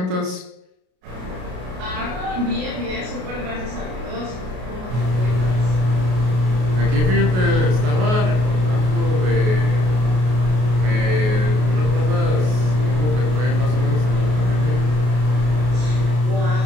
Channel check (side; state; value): left; late; 33 ms